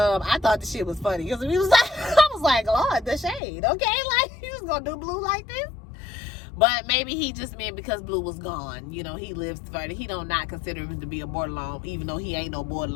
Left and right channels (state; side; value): drops out; right; at 3.4 s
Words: thought the shit was funny. Because he was like, I was like, Lord, the shade, okay? Like, he was going to do Blue like this? But maybe he just meant because Blue was gone. You know, he lives further. He don't not consider him to be a borderline, even though he ain't no